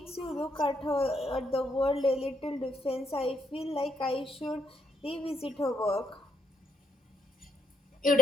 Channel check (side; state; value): both; normal; correlation 0.75